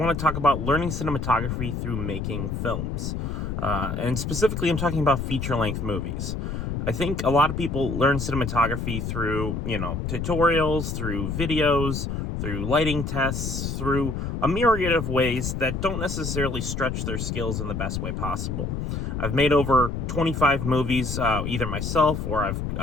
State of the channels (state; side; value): noise; left; rumble, 3 dB below the sound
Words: to talk about learning cinematography through making films. And specifically, I'm talking about feature-length movies. I think a lot of people learn cinematography through, tutorials, through videos, through lighting tests, through a myriad of ways that don't necessarily stretch their skills in the best way possible. I've made over 25 movies, either myself or